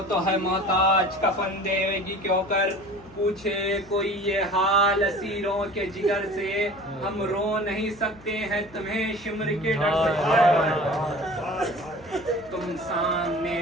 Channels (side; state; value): left; noise; hum, 24 dB below the sound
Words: تو ہے محتاج کفن دیوے گی کیوں کر، پوچھے کوئی یہ حال اسیروں کے جگر سے، ہم رو نہیں سکتے ہیں تمہیں شمر کے ڈر سے، تم سامنے